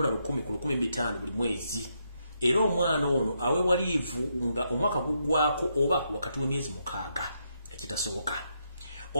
ku $15,000 buli mwezi era omwana ono aweebwa liivu nga omwaka guggwaako oba wakati w'emyezi 6 ekitasoboka.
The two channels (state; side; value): inverted; both; correlation -0.79